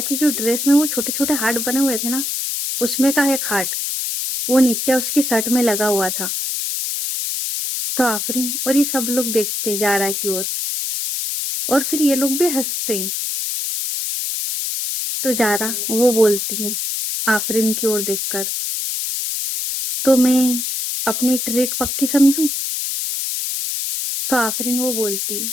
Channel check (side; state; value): left; noise; hiss, 2 dB below the sound